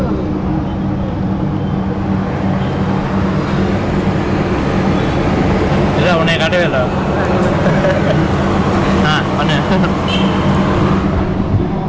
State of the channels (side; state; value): both; identical; correlation 1.00